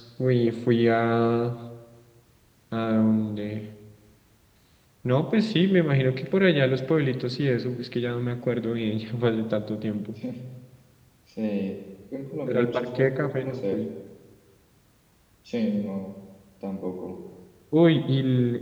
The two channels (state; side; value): identical; both; correlation 1.00